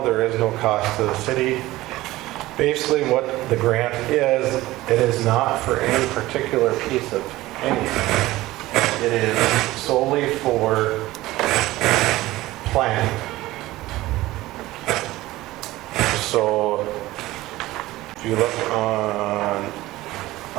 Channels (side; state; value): left; quieter; 17.6 dB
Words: there is no cost to the city. Basically, what the grant is, it is not for any particular piece of anything. It is solely for planning. So, if you look on